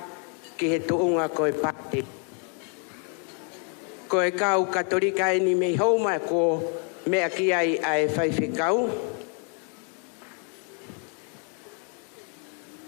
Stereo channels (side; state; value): right; quieter; 39.9 dB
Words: ki he tuunga koe pate. Koe kau katolika eni mei hauma ko mea ki ai ai whaiwhikau.